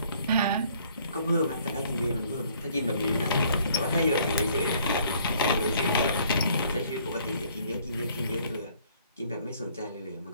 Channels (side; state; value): both; inverted; correlation -0.60